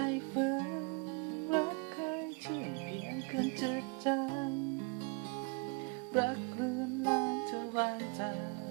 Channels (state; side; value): quieter; left; 32.6 dB